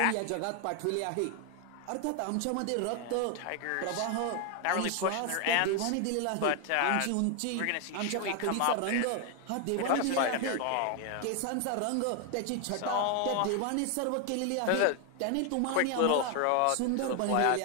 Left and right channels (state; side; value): different; both; correlation 0.00